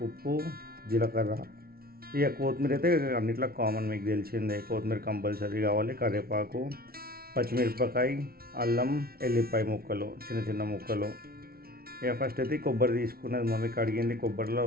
ఉప్పు, జీలకర్ర. ఇక కొత్తిమీర అయితే అన్నిట్లో కామన్, మీకు తెలిసిందే, కొత్తిమీర కంపల్సరీ కావాలి. కరివేపాకు, పచ్చిమిరపకాయ, అల్లం, ఎల్లిపాయ ముక్కలు, చిన్న చిన్న ముక్కలు. ఇక ఫస్ట్ అయితే కొబ్బరి తీసుకున్నది మమ్మీ, కడిగింది కొబ్బరిలో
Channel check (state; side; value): late; left; 0.44 ms